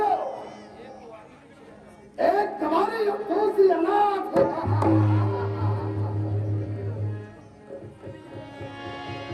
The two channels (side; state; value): both; identical; correlation 1.00